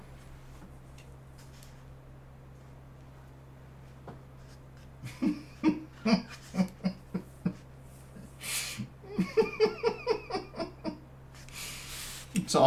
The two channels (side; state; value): both; identical; correlation 1.00